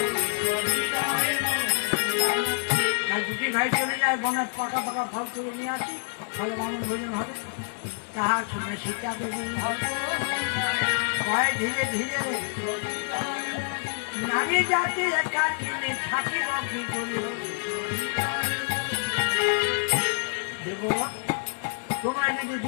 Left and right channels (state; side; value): silent; right; digital silence